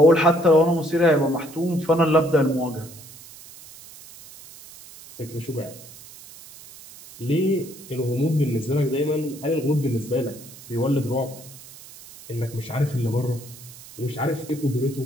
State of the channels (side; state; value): right; noise; hiss, 18 dB below the sound